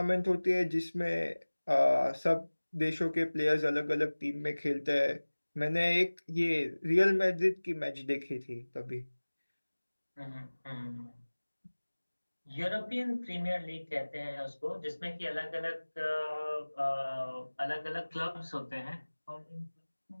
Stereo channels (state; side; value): inverted; both; correlation -1.00